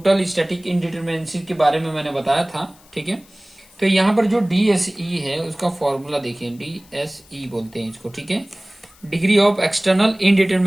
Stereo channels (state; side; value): noise; left; hiss, 27 dB below the sound